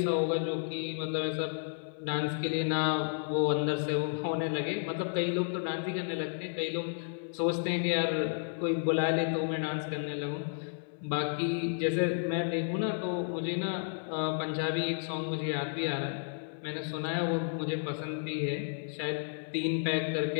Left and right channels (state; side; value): silent; right; digital silence